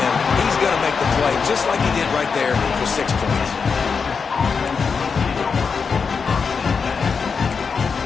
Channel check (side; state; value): right; quieter; 5.5 dB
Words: he's going to make the play, just like he did right there for 6 points.